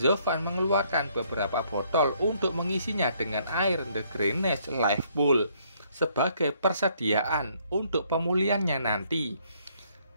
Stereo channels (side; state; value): both; inverted; correlation -0.67